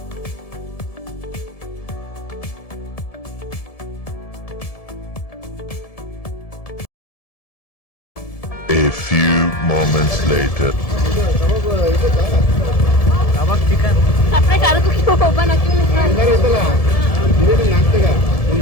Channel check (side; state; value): right; late; 1.7 ms